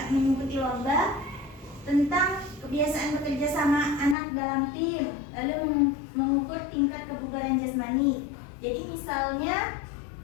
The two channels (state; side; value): drops out; right; at 4.2 s